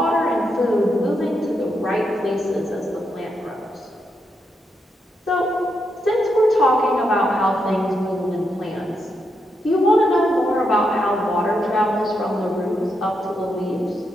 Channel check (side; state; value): both; normal; correlation 0.82